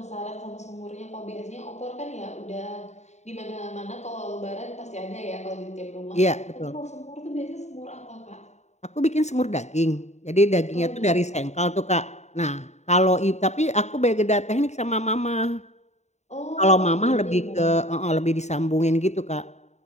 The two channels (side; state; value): right; late; 0.33 ms